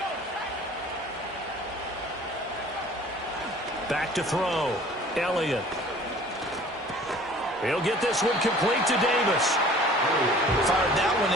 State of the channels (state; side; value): normal; both; correlation 0.49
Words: Back to throw. Elliott. He'll get this one complete to Davis. Fired that one